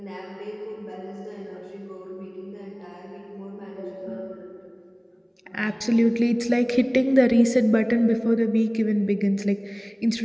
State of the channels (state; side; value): identical; both; correlation 1.00